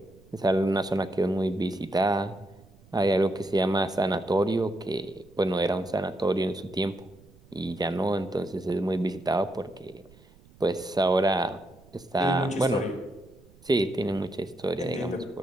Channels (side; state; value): right; noise; rumble, 26 dB below the sound